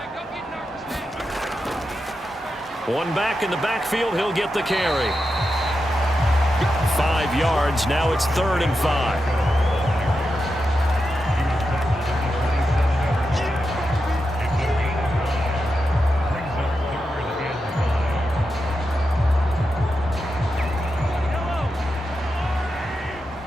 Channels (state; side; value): normal; both; correlation 0.88